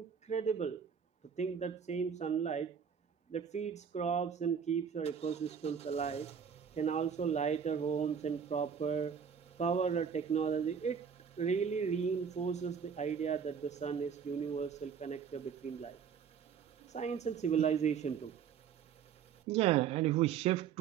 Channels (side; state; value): left; quieter; 7.3 dB